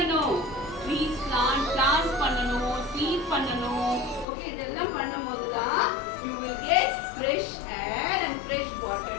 Trees plant பண்ணணும், seed பண்ணணும். Okay, இதெல்லாம் பண்ணும்போது தான் you will get fresh air and fresh water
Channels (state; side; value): drops out; right; at 4.2 s